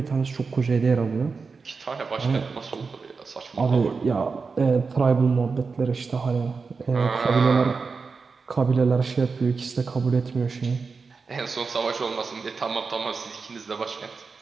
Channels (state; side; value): quieter; left; 4.8 dB